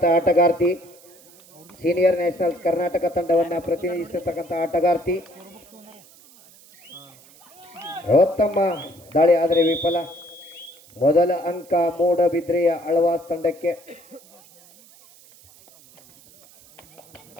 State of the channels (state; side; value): noise; right; hiss, 25 dB below the sound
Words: ಆಟಗಾರ್ತಿ ಸೀನಿಯರ್ ನ್ಯಾಷನಲ್ಸ್ ಕರ್ನಾಟಕ ತಂಡವನ್ನು ಪ್ರತಿನಿಧಿಸಿರ್ತಕ್ಕಂಥ ಆಟಗಾರ್ತಿ ಉತ್ತಮ ದಾಳಿ ಆದರೆ ವಿಫಲ. ಮೊದಲ ಅಂಕ ಮೂಡಬಿದ್ರೆಯ ಆಳ್ವಾಸ್ ತಂಡಕ್ಕೆ.